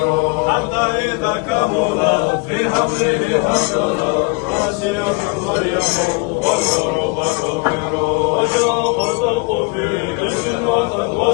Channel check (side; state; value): right; quieter; 29.0 dB